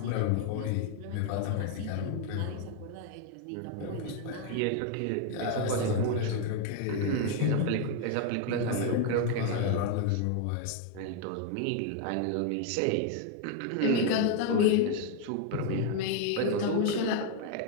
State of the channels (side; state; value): both; different; correlation 0.01